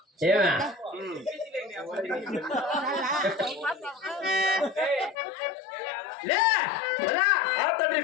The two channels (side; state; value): right; drops out; at 5.2 s